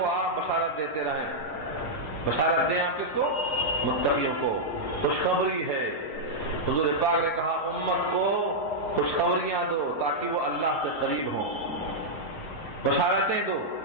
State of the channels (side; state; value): right; late; 6.6 ms